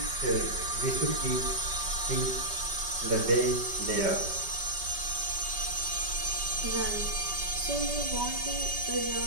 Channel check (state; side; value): late; left; 5.2 ms